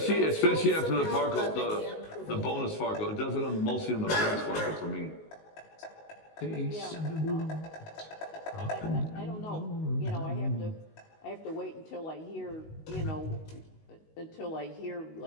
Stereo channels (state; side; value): late; right; 19 ms